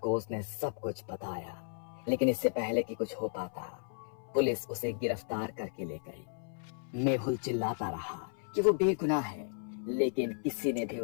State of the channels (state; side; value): silent; right; 55 dB below the other